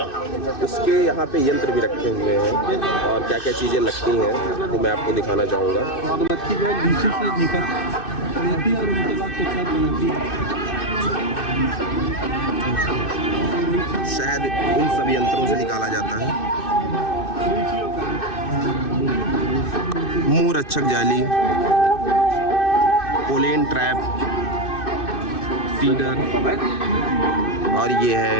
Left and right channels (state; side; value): late; right; 2.6 ms